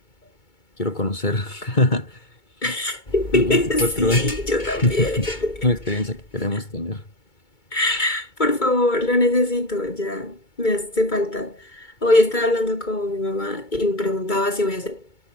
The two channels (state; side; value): late; right; 2.2 ms